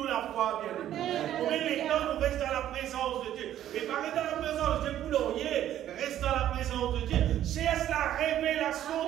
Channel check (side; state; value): left; quieter; 11.8 dB